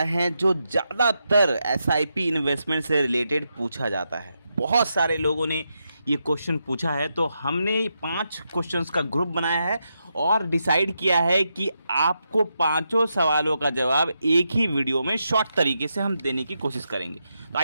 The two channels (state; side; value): inverted; both; correlation -0.84